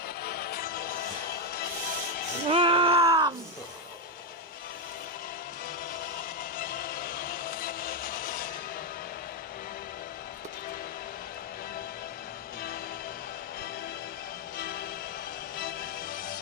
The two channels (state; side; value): normal; both; correlation 0.05